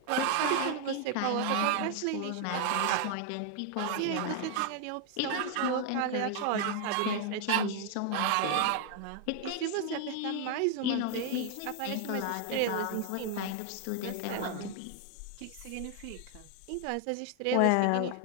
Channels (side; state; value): both; different; correlation 0.00